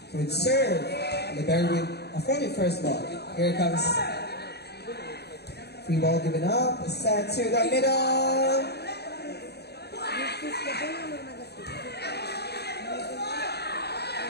Good serve. Libero with a 41st ball. Here comes free ball given up. Set to the middle.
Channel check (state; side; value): late; right; 0.48 ms